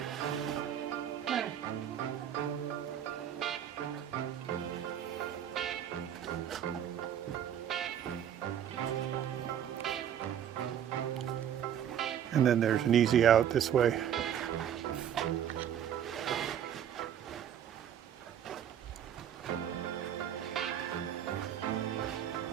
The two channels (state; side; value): quieter; left; 9.6 dB